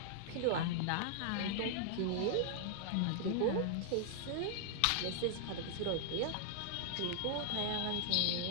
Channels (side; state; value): both; different; correlation -0.01